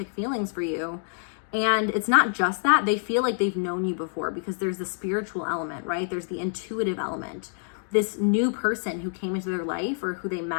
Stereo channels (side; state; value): right; silent; digital silence